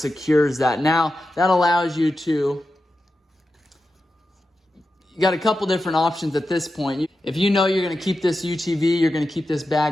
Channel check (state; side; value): normal; both; correlation 0.91